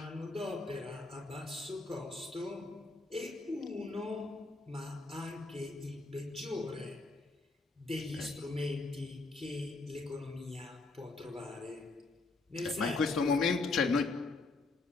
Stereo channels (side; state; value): right; quieter; 3.5 dB